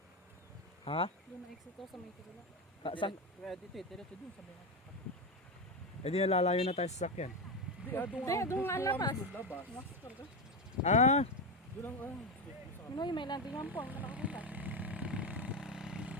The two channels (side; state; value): both; normal; correlation 0.13